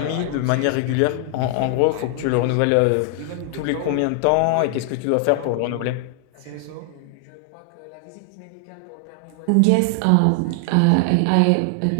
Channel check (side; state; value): both; different; correlation 0.00